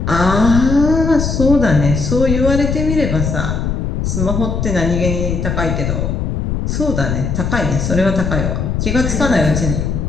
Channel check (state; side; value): noise; left; rumble, 1 dB below the sound